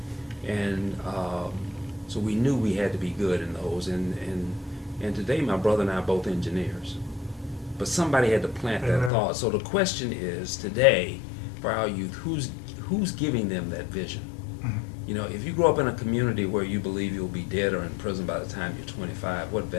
And so we knew we had to be good in those. And today, my brother and I are both engineers. But somebody had to plant that thought. So the question is, today, for our youth, who's giving them that vision? If you grow up in a community where you believe you'll be dead or in prison by the time you're 25, what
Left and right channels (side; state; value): right; drops out; at 9.1 s